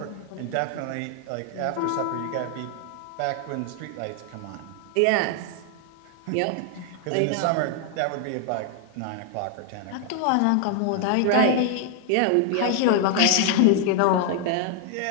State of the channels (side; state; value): both; different; correlation 0.00